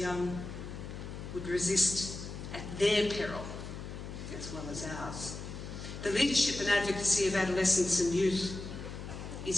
would resist at their peril as well as ours. The leadership and advocacy of adolescents and youth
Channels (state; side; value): noise; left; hum, 9 dB below the sound